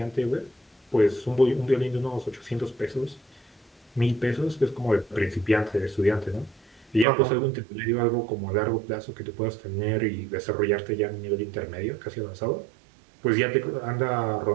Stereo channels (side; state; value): left; drops out; at 7.1 s